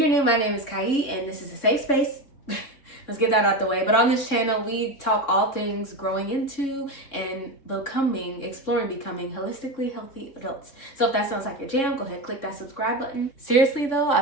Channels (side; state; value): right; late; 3.6 ms